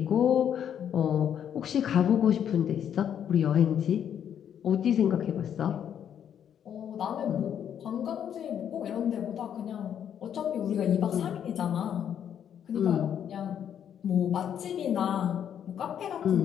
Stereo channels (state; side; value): quieter; right; 9.1 dB